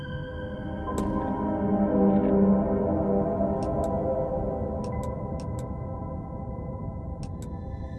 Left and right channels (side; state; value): both; identical; correlation 1.00